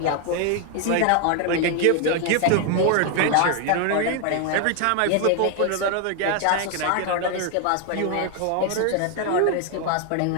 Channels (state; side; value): different; both; correlation 0.00